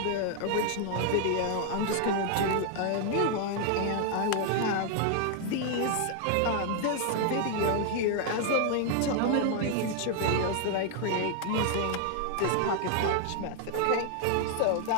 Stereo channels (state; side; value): different; both; correlation 0.00